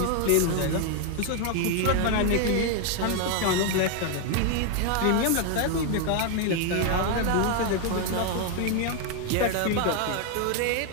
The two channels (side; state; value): both; different; correlation 0.01